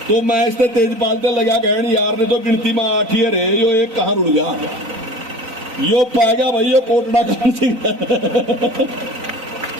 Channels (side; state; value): left; late; 4.0 ms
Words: तो मैं इससे तेजपाल से लगा कहन यार ने तो गिनती में 8 ही रहे, यो एक कहां रुड़ गया, यो पा गया भाई यो कोटड़ा काहन सिंह